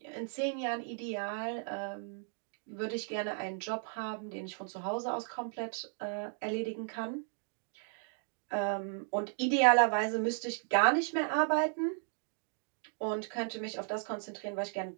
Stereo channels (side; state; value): left; silent; 54 dB below the other